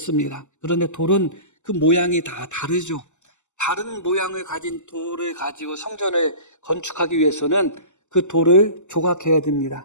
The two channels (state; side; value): late; right; 0.84 ms